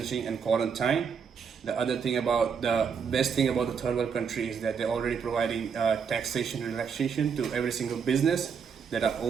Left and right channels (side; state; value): left; quieter; 6.5 dB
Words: and quarantine. The best thing about the third world country is that they're already providing taxation relaxation to every single business that are